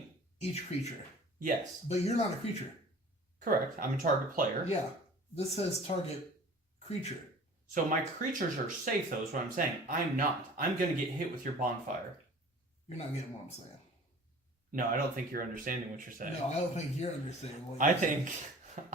Each creature. Yes. But you're not a creature. Correct. I'm a target player. Yeah. This says target creature. So my creatures are safe, though, is what I'm saying. I'm not. I'm going to get hit with your bonfire. You're not getting what I'm saying. No, I don't think you're understanding what you're saying. No, I don't think you're understanding what you're saying. I think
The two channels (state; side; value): normal; both; correlation 0.45